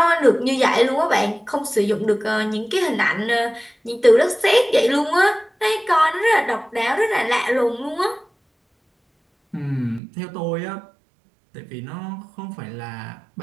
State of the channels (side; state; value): left; drops out; at 10.0 s